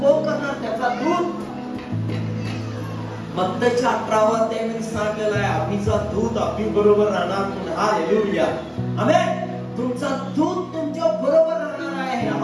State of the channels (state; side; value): identical; both; correlation 1.00